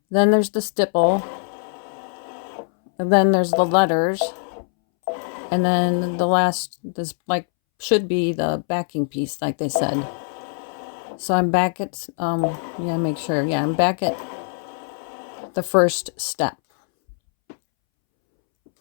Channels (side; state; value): right; silent; 64 dB below the other